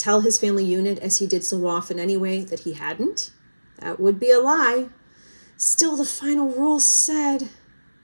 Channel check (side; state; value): both; inverted; correlation -1.00